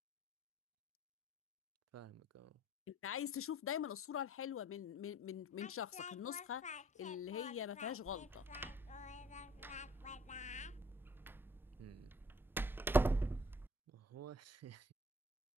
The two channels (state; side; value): normal; both; correlation 0.56